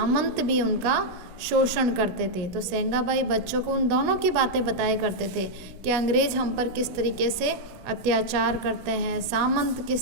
भी उनका शोषण करते थे। तो सेंगाबाई बच्चों को उन दोनों की बातें बताया करते थे कि अंग्रेज हम पर किस तरीके से अत्याचार करते हैं, सामंत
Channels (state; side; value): late; left; 17 ms